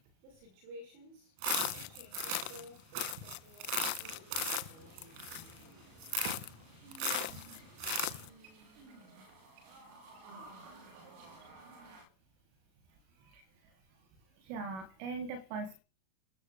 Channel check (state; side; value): late; left; 37 ms